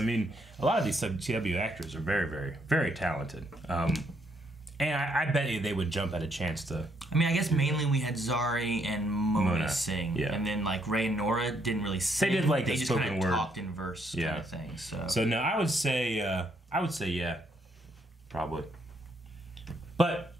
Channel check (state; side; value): normal; both; correlation 0.72